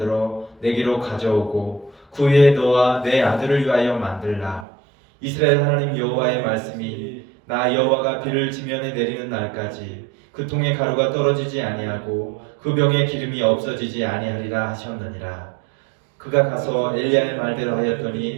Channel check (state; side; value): drops out; left; at 4.7 s